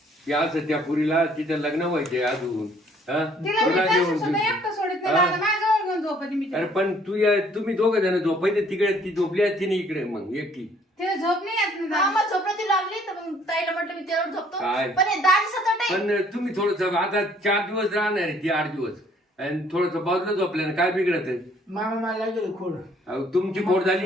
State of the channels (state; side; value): normal; both; correlation 0.61